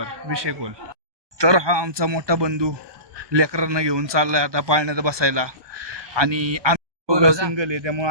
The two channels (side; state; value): left; late; 1.2 ms